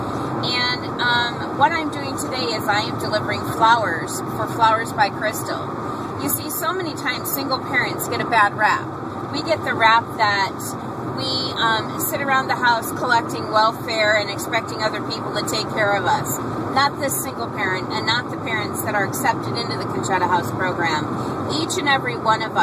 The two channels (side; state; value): both; identical; correlation 1.00